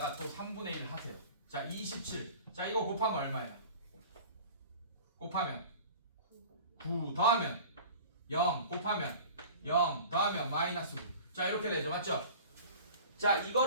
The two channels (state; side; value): inverted; both; correlation -0.40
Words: 또 3분의 1 하세요. 자, 27. 자, 이거 곱하면 얼마예요? 곱하면 9 더하면 0 곱하면 0 더하면 마이너스 9. 자, 이렇게 되죠, 맞죠? 자,